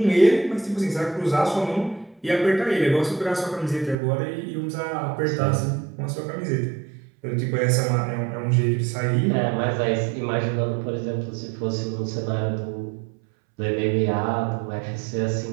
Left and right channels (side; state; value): left; drops out; at 4.0 s